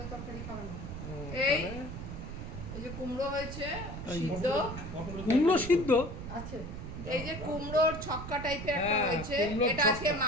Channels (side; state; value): right; noise; rumble, 8 dB below the sound